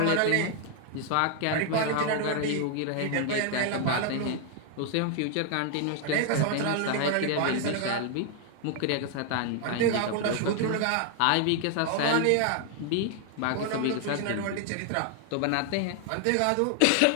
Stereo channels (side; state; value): both; different; correlation 0.00